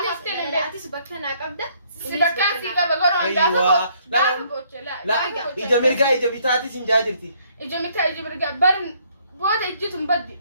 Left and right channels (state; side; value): inverted; both; correlation -0.66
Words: أفتن لا تسبكنا قبضة سبكان في قبل قرون أيوة. لا إجا مرقا إجا بتاعتي سنجاجرتي إجا متى إجا مرقا برن بودا إجتم بدي